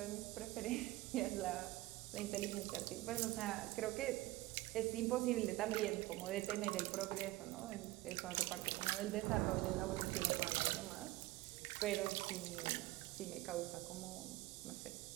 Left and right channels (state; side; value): quieter; left; 18.4 dB